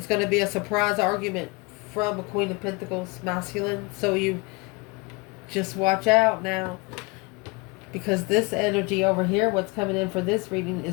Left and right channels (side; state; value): right; quieter; 26.5 dB